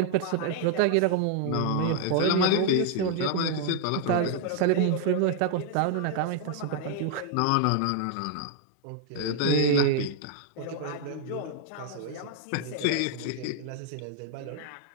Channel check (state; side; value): different; both; correlation 0.00